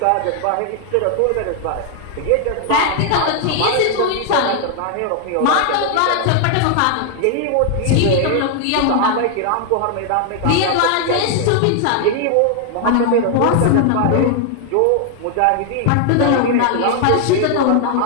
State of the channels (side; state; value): both; different; correlation 0.00